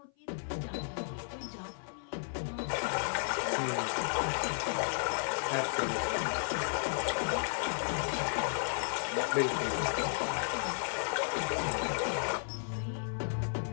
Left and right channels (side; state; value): right; silent; 55 dB below the other